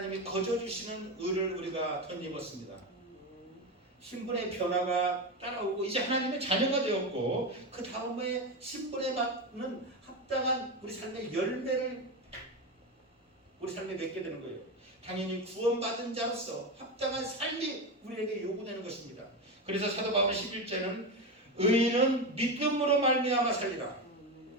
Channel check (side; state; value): both; normal; correlation 0.16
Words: 거저주시는 의를 우리가 덧입었습니다. 신분의 변화가 따라오고 이제 하나님의 자녀가 되었고 그 다음에 신분에 맞는 합당한 우리 삶의 열매를 우리 삶에 맺게 되는 거예요. 당연히 구원받은 자로서 합당한 삶이 우리에게 요구되는 것입니다. 그래서 사도 바울의 11절은 의인은 믿음으로 말미암아 살리라.